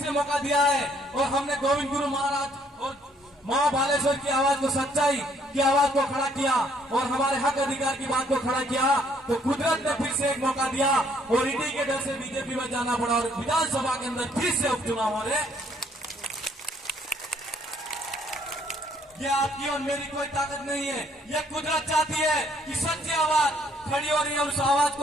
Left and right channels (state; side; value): normal; both; correlation 0.66